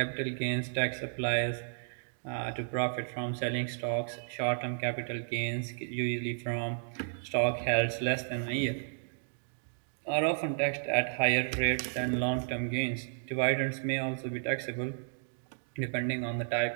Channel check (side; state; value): left; silent; digital silence